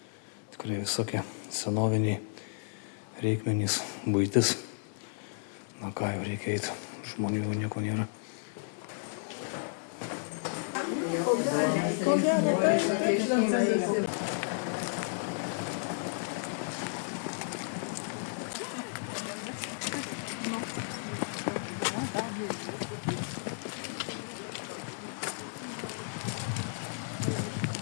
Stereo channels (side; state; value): right; silent; digital silence